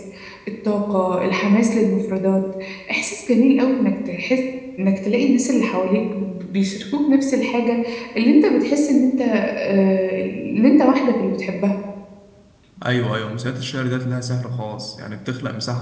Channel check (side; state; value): both; identical; correlation 1.00